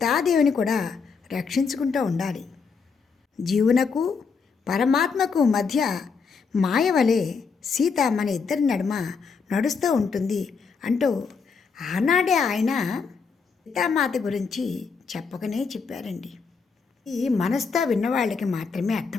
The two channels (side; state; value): right; quieter; 5.3 dB